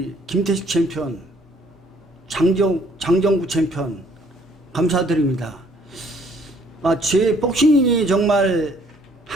김태식 챔피언, 장정구 챔피언 감사드립니다. 제 복싱이 정말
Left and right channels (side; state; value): both; normal; correlation 0.62